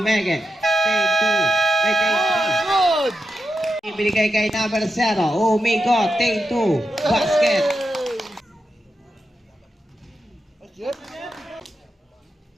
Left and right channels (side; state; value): both; normal; correlation 0.87